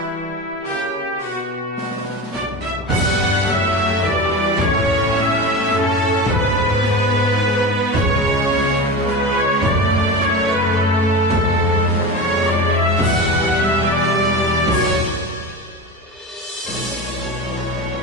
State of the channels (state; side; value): normal; both; correlation 0.27